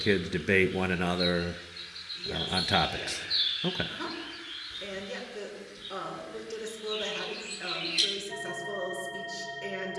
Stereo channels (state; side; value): identical; both; correlation 1.00